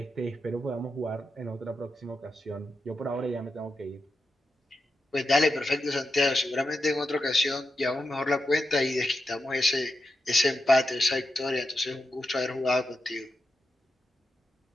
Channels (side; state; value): both; normal; correlation 0.88